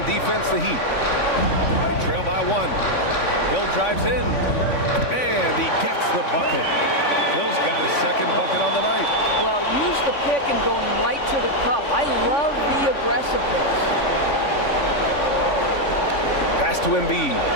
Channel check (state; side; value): late; right; 3.5 ms